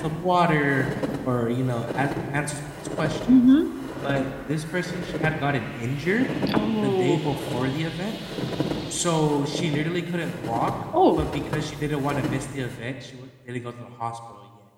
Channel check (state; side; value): identical; both; correlation 1.00